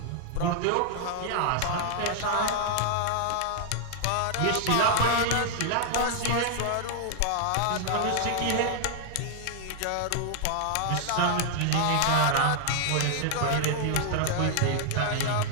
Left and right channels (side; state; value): both; different; correlation 0.00